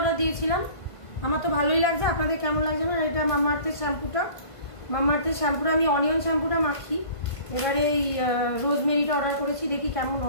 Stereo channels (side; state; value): right; late; 1.5 ms